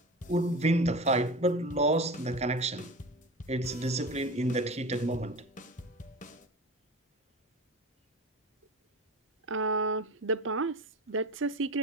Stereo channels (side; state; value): both; normal; correlation 0.31